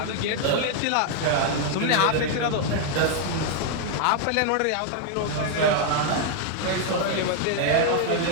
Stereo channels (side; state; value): both; different; correlation 0.00